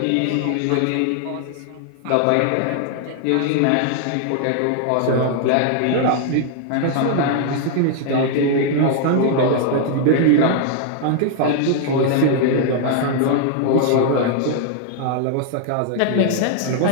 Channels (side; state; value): both; different; correlation 0.00